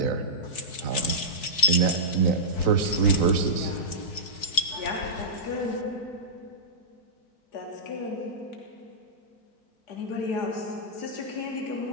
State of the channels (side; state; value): right; late; 4.6 ms